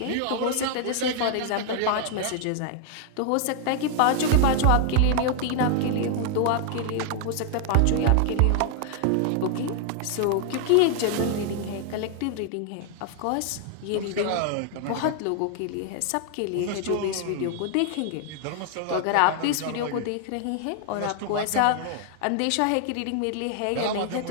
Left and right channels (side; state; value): both; different; correlation 0.00